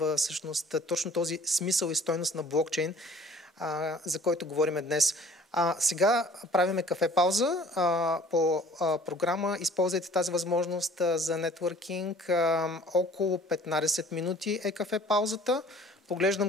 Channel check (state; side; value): normal; both; correlation 0.52